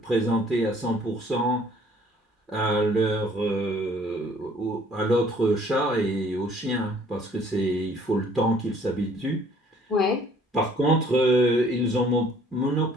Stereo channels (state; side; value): normal; both; correlation 0.58